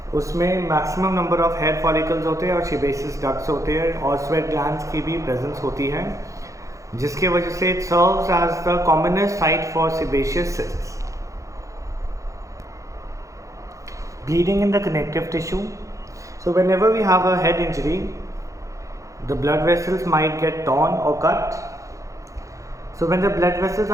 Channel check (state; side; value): late; left; 0.15 ms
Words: उसमें maximum number of hair follicles होते हैं और सीबेसियस डक्ट्स होते हैं और स्वेट ग्लैंड्स की भी प्रेजेंस होती है, जिसके वजह से it serves as the commonest site for sebaceous cysts. Bleeding in the connective tissue. So whenever we have a head injury, the blood vessels might get torn or cut. So when the blood vessels